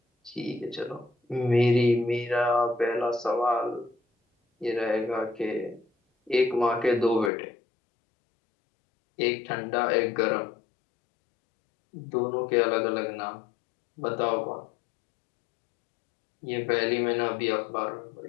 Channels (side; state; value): right; drops out; at 7.3 s